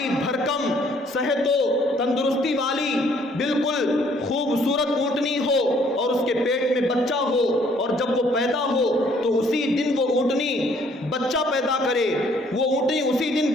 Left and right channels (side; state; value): both; normal; correlation 0.63